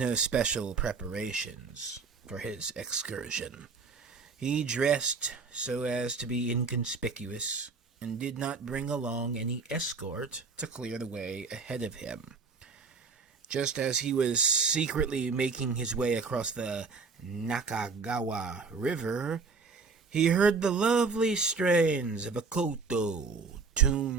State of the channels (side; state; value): left; quieter; 4.7 dB